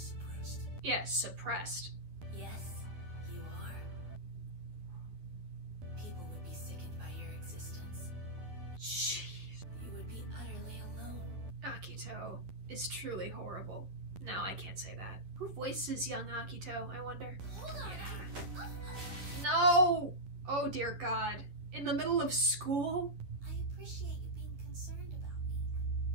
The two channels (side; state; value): left; late; 11 ms